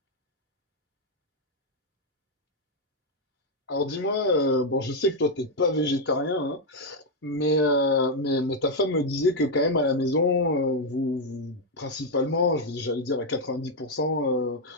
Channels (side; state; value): both; normal; correlation 0.02